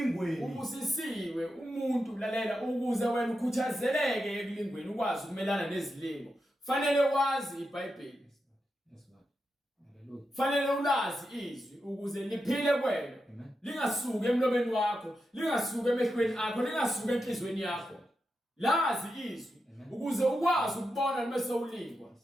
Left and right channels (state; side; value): normal; both; correlation 0.88